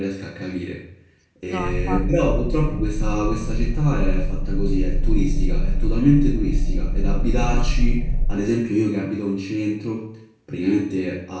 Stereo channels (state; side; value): identical; both; correlation 1.00